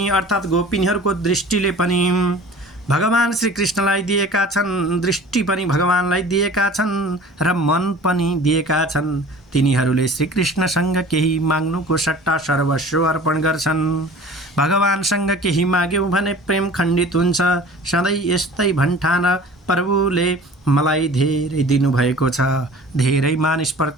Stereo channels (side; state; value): both; normal; correlation 0.44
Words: अर्थात् गोपिनीहरूको दृष्टिले पनि भगवान श्री कृष्णलाई दिएका छन्, दृष्टि पनि भगवानलाई दिएका छन् र मन पनि दिएका छन्। तिनीहरूले श्रीकृष्णसँग केही माग्नुको सट्टा सर्वस्व अर्पण गर्छन्। भगवानसँग केही माग्यौँ भने प्रेम खण्डित हुन्छ। सधैँ यस्तै भन्ठान प्रभुले मलाई धेरै दिनुभएको छ। धेरै